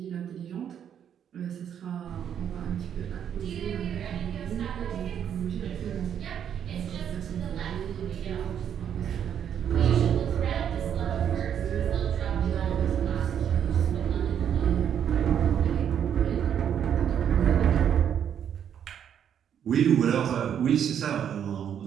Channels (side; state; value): left; quieter; 8.9 dB